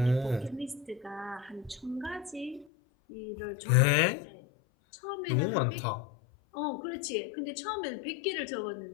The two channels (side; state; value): right; drops out; at 2.7 s